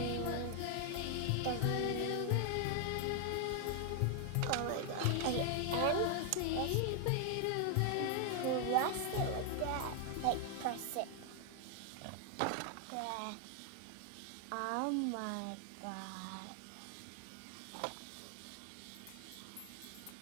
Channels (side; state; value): both; different; correlation 0.00